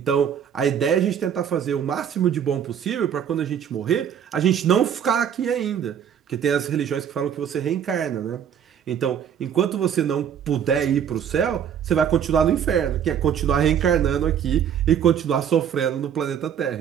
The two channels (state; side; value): quieter; left; 8.6 dB